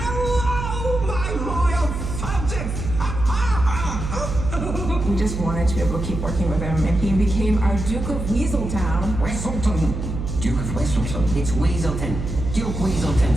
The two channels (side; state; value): right; noise; hum, 5 dB below the sound